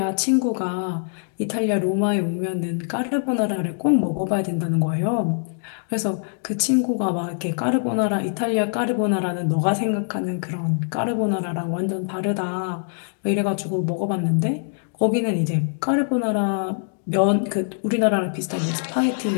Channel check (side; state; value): right; silent; digital silence